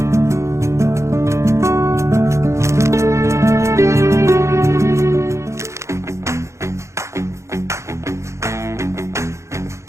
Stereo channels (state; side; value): late; left; 0.14 ms